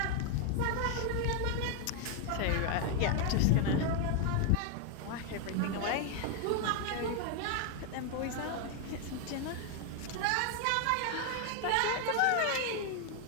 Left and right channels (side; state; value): both; different; correlation 0.01